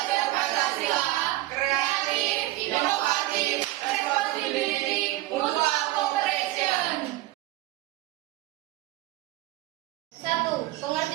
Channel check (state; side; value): quieter; left; 16.8 dB